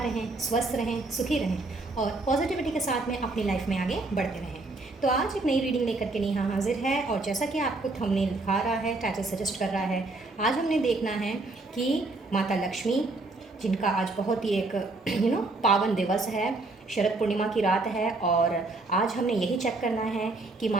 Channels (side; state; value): left; quieter; 3.2 dB